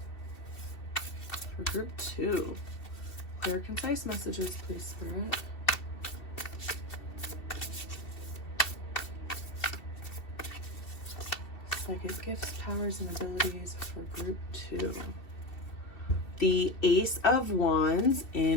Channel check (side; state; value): right; late; 2.7 ms